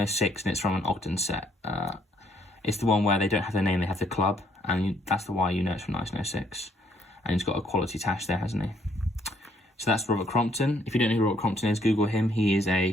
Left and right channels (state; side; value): normal; both; correlation 0.68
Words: and it's from an Ogden set. It's the one where they don't have their name, they have the club, and that's the why you know it's from 1906. And he's got a quality tash there, hasn't he? So that's Robert Crompton. If you don't know who Robert Crompton is, Google him. He is